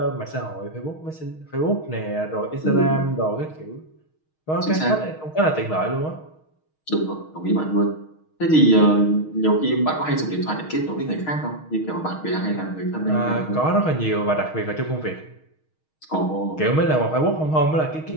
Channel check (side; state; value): right; late; 6.4 ms